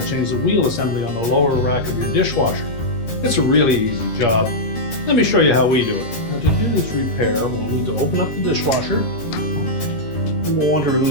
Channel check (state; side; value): late; right; 13 ms